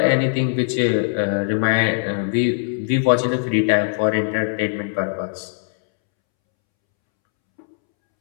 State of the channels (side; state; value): right; silent; 65 dB below the other